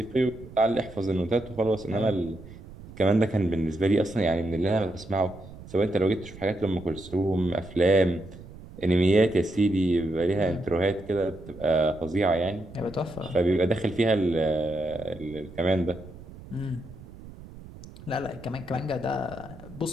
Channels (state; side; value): noise; right; rumble, 17 dB below the sound